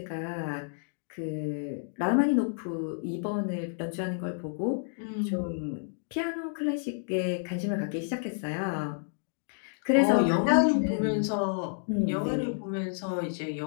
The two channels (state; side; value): silent; right; digital silence